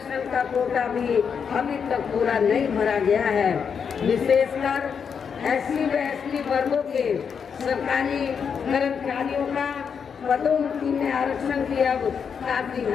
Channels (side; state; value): right; quieter; 6.7 dB